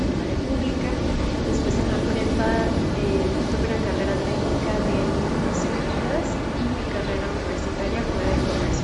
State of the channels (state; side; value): identical; both; correlation 1.00